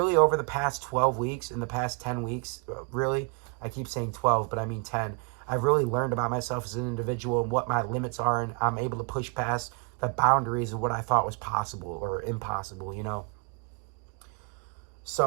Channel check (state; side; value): quieter; left; 32.9 dB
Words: over the past 12 weeks, in the past 10 weeks, really, I keep saying 12, but I mean 10, I've really learned about myself as an individual and what my limits are, and I'm able to push past the boundaries of what I thought was possible or impossible,